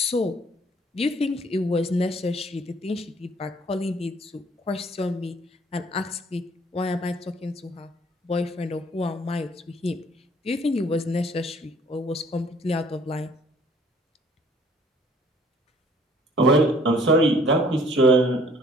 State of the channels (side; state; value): both; normal; correlation 0.57